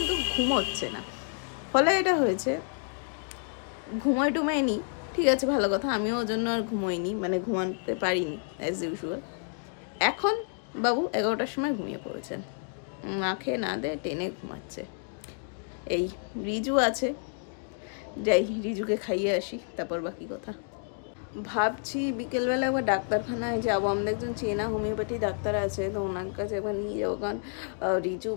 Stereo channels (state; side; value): silent; right; 58 dB below the other